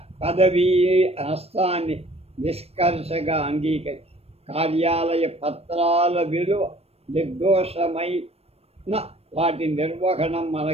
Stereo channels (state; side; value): late; left; 0.29 ms